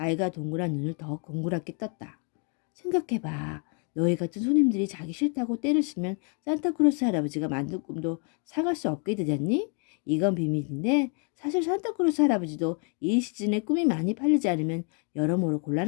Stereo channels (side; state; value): right; quieter; 38.4 dB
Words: 동그란 눈을 더 공그랗게 떴다. 생각해봐. 너희 같은 손님들이 자기 싫다고 때를 쓰면 산타크로스 할아버지가 만든 꿈도 사갈 수 없게 되잖니? 이건 비밀인데 사실 산타크로스 할아버지도 이 시즌에 꿈이 많이 팔리지 않으면 여러모로